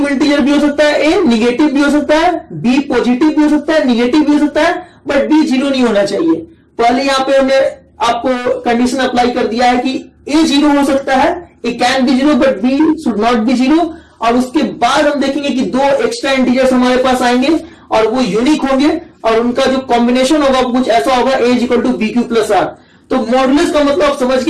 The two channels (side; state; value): both; identical; correlation 1.00